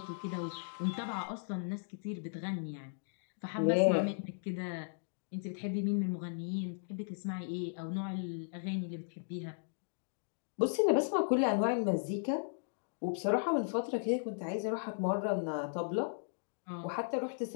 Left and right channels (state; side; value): silent; right; digital silence